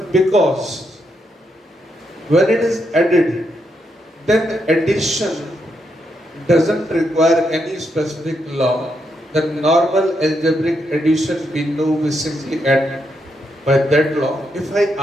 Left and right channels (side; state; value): both; normal; correlation 0.80